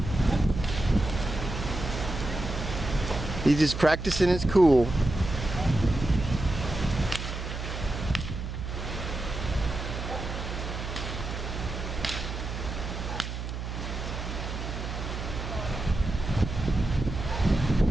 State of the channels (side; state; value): right; noise; hum, 6 dB below the sound